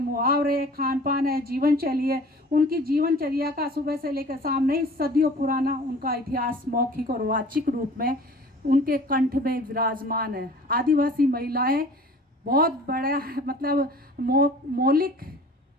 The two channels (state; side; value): normal; both; correlation 0.46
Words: मुहावरे, खान पान है, जीवनशैली है। उनकी जीवनचर्या का सुबह से लेकर शाम नहीं, सदियों पुराना उनका इतिहास मौखिक और वाचिक रूप में उनके कंठ में विराजमान है। आदिवासी महिलाएं बहुत बड़ा मतलब